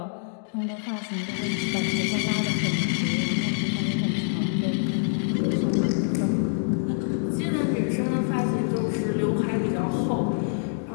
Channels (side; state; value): right; silent; digital silence